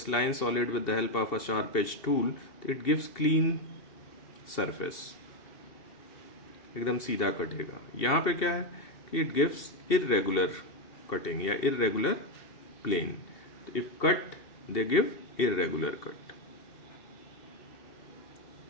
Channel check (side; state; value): right; late; 2.7 ms